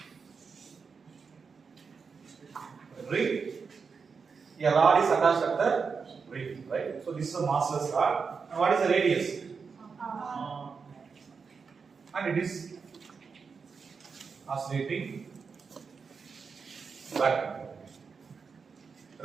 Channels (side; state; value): left; quieter; 5.4 dB